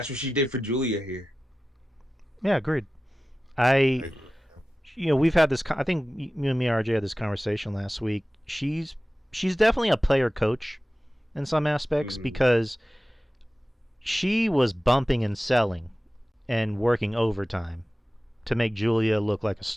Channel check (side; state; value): both; normal; correlation 0.95